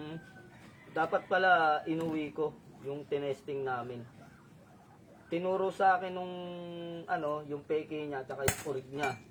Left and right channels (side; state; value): both; identical; correlation 1.00